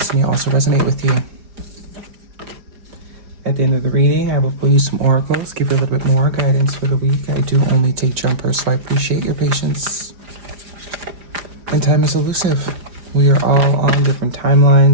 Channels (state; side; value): late; left; 4.9 ms